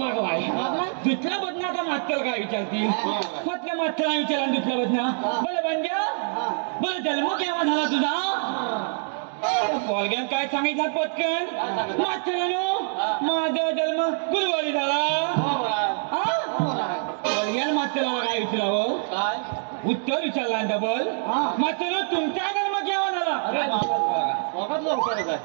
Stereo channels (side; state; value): left; silent; digital silence